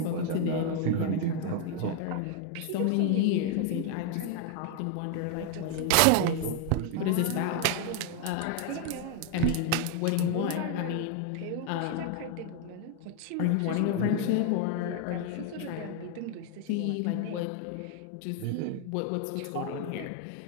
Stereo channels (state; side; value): different; both; correlation 0.01